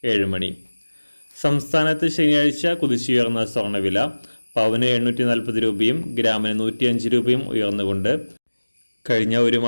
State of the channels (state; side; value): inverted; both; correlation -1.00